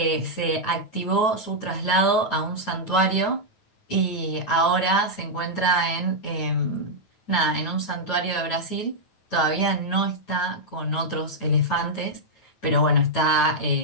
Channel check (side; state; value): right; late; 9.1 ms